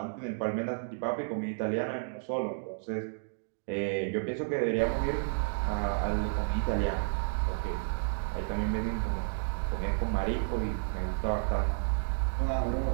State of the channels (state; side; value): silent; left; digital silence